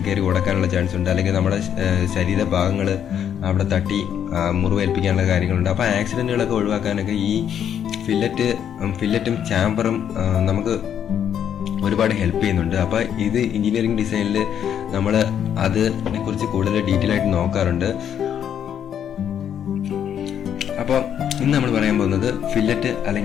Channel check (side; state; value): right; quieter; 9.1 dB